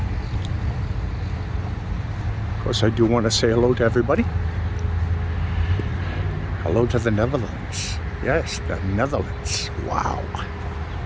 Of course, I do want to say hello to everybody. Hello to the Netherlands. Yes, the Netherlands. Wow.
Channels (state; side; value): identical; both; correlation 1.00